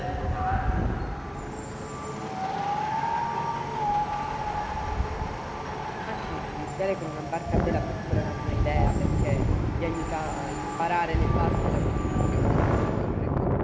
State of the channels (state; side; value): identical; both; correlation 1.00